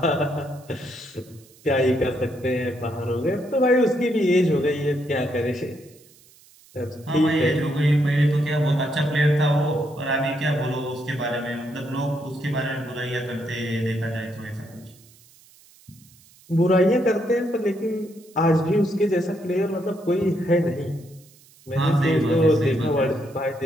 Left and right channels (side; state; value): right; noise; hiss, 27 dB below the sound